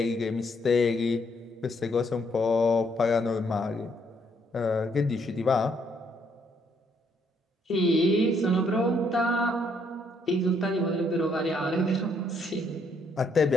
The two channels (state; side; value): normal; both; correlation 0.71